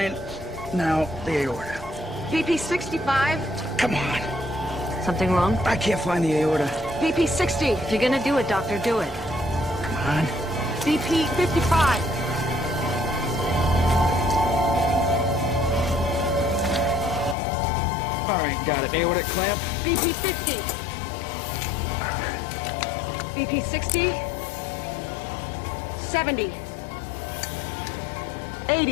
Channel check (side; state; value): right; drops out; at 17.4 s